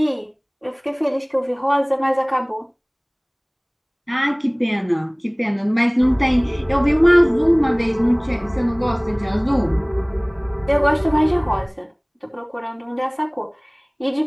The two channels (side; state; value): both; identical; correlation 1.00